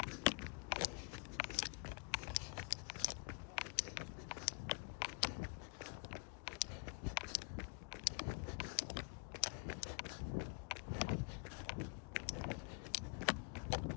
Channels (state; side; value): quieter; right; 36.2 dB